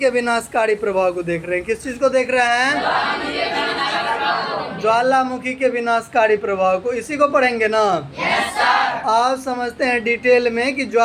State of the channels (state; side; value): identical; both; correlation 1.00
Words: विनाशकारी प्रभाव को देख रहे हैं। किस चीज को देख रहे हैं? ज्वालामुखी के विनाशकारी प्रभाव को। इसी को पढ़ेंगे ना? आप समझते हैं डिटेल में कि